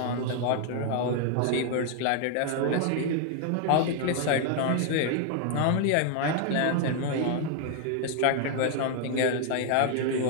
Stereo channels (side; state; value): both; different; correlation 0.00